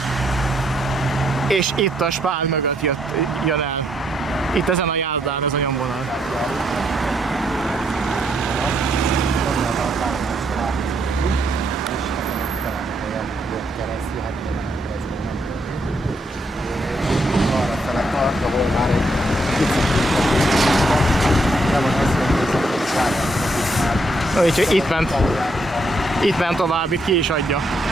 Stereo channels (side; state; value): both; normal; correlation 0.75